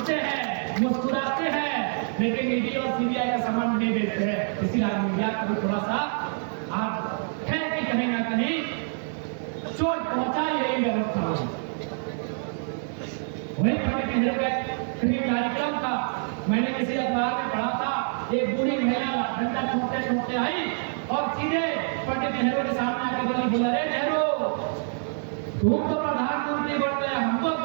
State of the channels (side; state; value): left; silent; 61 dB below the other